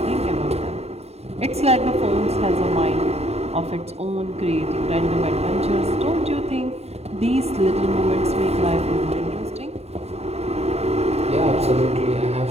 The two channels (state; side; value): late; left; 0.30 ms